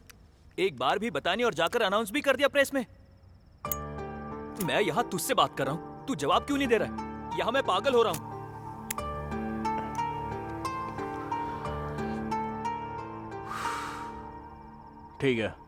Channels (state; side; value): identical; both; correlation 1.00